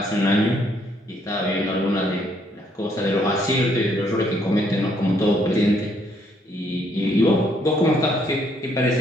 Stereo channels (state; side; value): normal; both; correlation 0.69